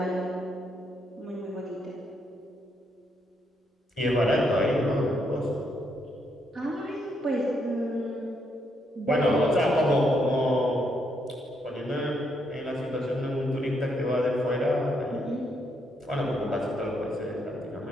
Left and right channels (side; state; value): both; normal; correlation 0.76